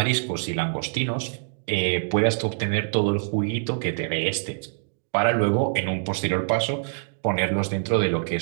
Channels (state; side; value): silent; left; digital silence